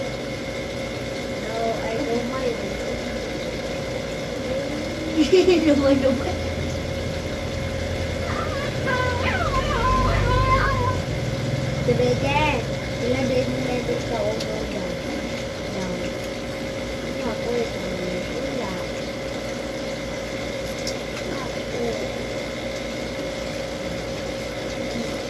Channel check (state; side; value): identical; both; correlation 1.00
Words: No, I don't mind. Lumay, lumay. Tumigil. Sila din nila sa ulo dyan. Yan. Ako, ito nila. Ako.